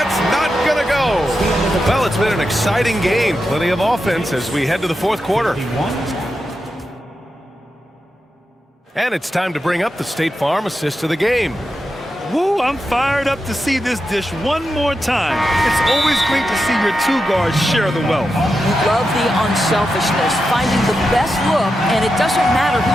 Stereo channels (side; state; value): both; normal; correlation 0.88